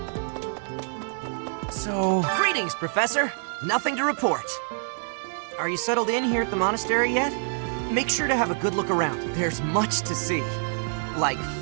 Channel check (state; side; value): silent; left; 60 dB below the other